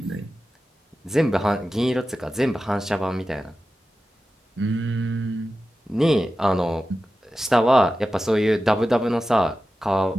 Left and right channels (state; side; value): normal; both; correlation 0.93